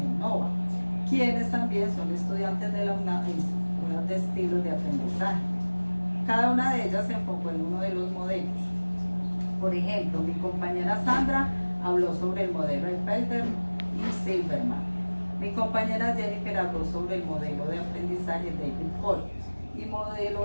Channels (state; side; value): inverted; both; correlation -1.00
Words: Nova, quienes también son estudiantes de la UNAM e instructoras de estilos de aprendizaje. Cada una de ellas se enfocó en uno de los modelos. Por ejemplo, mi compañera Sandra habló sobre el modelo de Felder y Silverman. Mi compañera Jennifer habló sobre el modelo de aprendizaje David Cole y